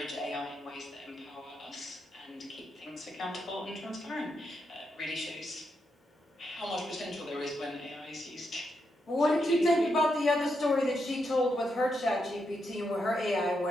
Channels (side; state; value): both; normal; correlation 0.82